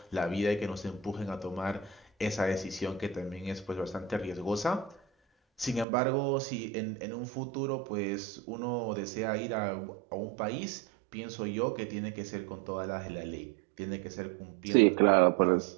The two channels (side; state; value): left; drops out; at 5.9 s